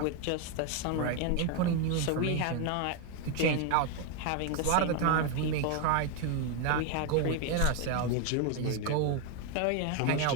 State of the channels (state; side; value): different; both; correlation 0.01